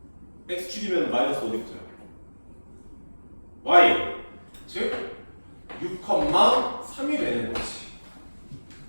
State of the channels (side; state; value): both; inverted; correlation -1.00